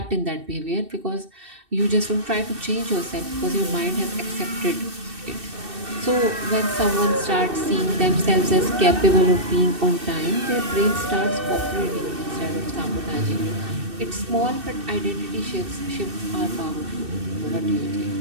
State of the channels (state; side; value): late; left; 2.6 ms